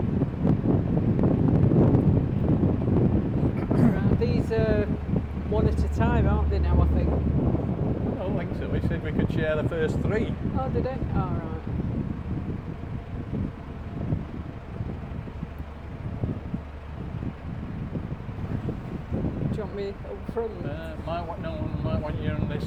These are one at a time, aren't they now, I think? I don't think so. We said we could share the first three. Oh, did they? Oh, right. Do you want me up front? Might want you on this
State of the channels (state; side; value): identical; both; correlation 1.00